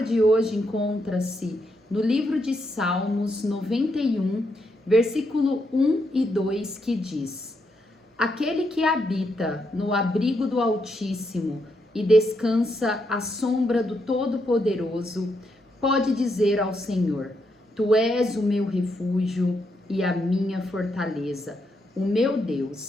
de hoje encontra-se no livro de Salmos 91, versículo 1 e 2, que diz: Aquele que habita no abrigo do Altíssimo e descansa à sombra do Todo-Poderoso, pode dizer ao Senhor: Tu és o meu refúgio e a minha fortaleza, o meu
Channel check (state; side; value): normal; both; correlation 0.79